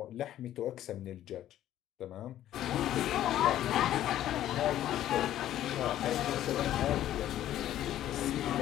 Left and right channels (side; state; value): right; quieter; 12.4 dB